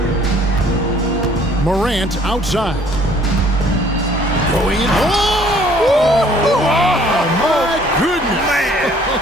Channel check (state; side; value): normal; both; correlation 0.58